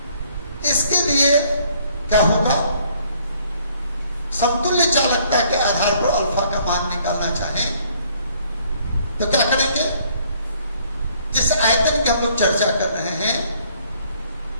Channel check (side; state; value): both; inverted; correlation -0.63